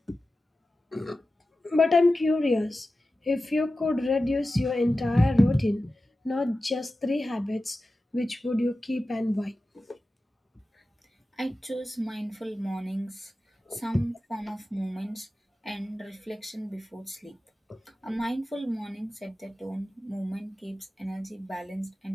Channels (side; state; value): both; normal; correlation 0.94